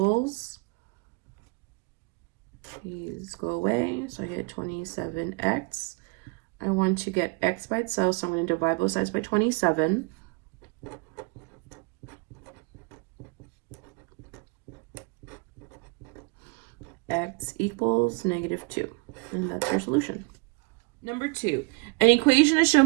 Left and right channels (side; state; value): left; quieter; 30.1 dB